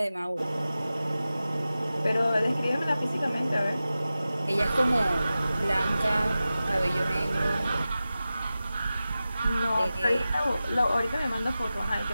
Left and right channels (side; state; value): both; inverted; correlation -0.94